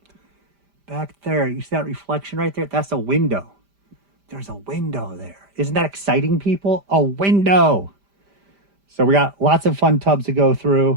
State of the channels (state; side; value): late; left; 5.0 ms